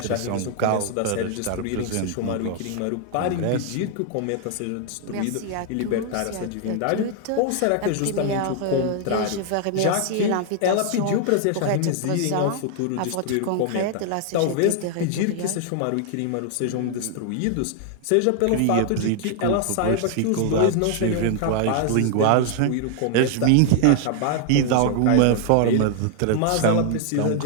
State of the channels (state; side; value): different; both; correlation 0.00